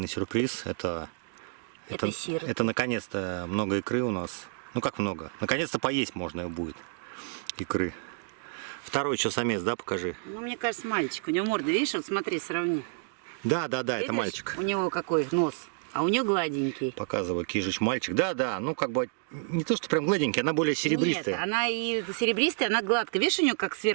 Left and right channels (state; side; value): silent; left; 58 dB below the other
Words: сюрприз. Это сироты. это наконец-то много икры у нас. Ну как много? Наконец-то поесть можно будет икры. Второй что, самец, да, покажи. Ну, мне кажется, мальчик. У него морда, видишь, вот смотри, сравни. Да, это Видишь? мальчик. У него какой нос, а у нее гладенький. Показываю, Кижич мальчик. Да, ну как бы не то, что прям гладенький, она более серебристая. Нет, она и серебристая, она гладкая. Видишь, у нее как